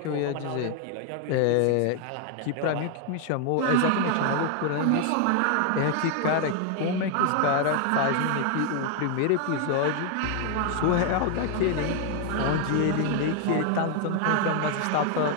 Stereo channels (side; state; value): both; different; correlation 0.00